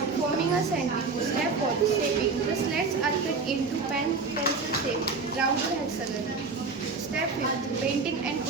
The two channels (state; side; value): quieter; left; 4.4 dB